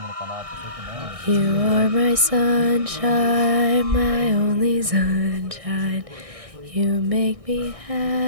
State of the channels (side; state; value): left; late; 1.6 ms